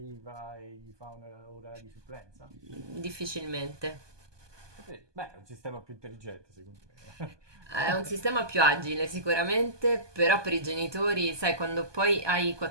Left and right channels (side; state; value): left; late; 1.2 ms